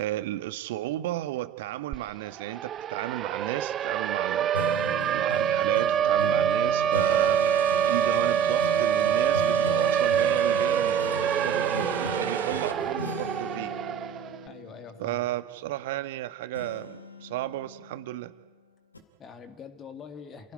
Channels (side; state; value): left; quieter; 8.5 dB